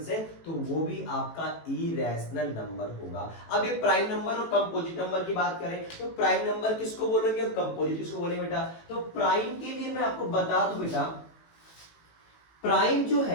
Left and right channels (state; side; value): late; right; 18 ms